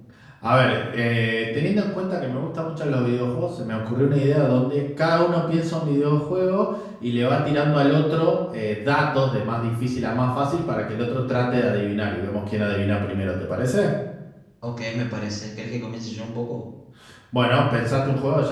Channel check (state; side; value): identical; both; correlation 1.00